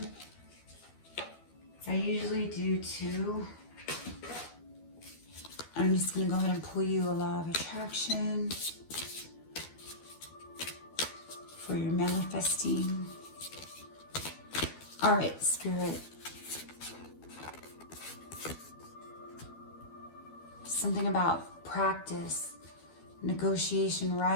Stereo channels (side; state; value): right; late; 12 ms